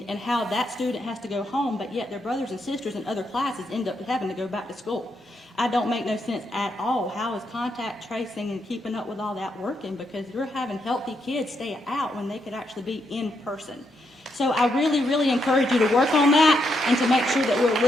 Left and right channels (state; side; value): normal; both; correlation 0.79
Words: and how that student has to go home, but yet their brothers and sisters in other classes end up having to go back to school. I don't make no sense at all. How is contact tracing and keeping up with all that working? Because you're having healthy kids stay out when they could actually be in person. So I really, really encourage you to work on that and to make sure that we're a